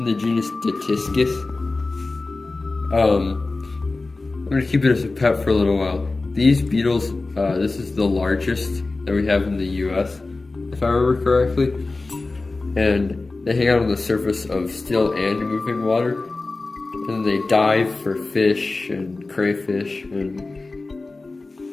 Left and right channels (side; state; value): right; quieter; 3.4 dB